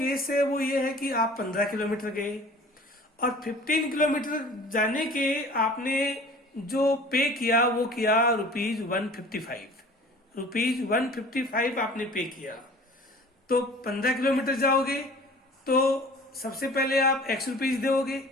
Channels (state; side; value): normal; both; correlation 0.45